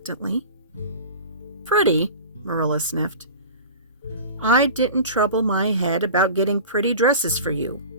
"Pretty?" Marilla sniffed. "I didn't trouble my head about getting pretty dresses for you.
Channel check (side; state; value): both; inverted; correlation -0.36